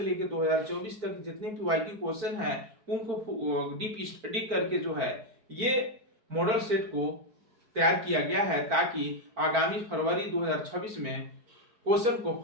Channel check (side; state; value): left; late; 4.7 ms